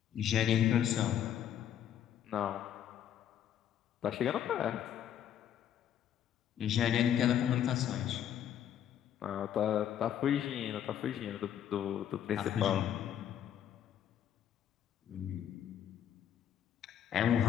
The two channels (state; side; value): quieter; right; 10.0 dB